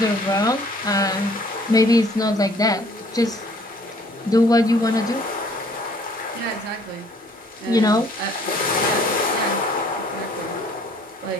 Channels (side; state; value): both; normal; correlation 0.58